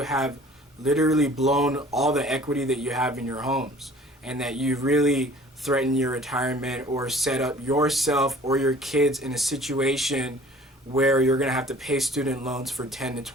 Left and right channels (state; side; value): normal; both; correlation 0.50